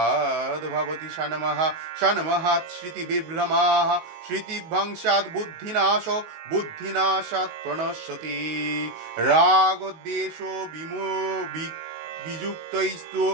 भवति षण्मः षण्महात् श्रुतिविभ्रमाः श्रुतिभंशात् बुद्धिनाशो बुद्धिनाशात् प्रणश्यति रागद्वेषो वियुक्तैस्तु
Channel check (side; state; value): left; late; 19 ms